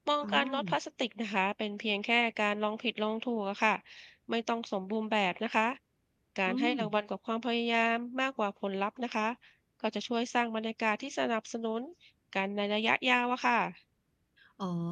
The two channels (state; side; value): identical; both; correlation 1.00